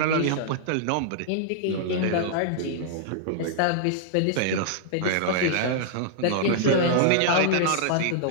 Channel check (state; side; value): different; both; correlation -0.01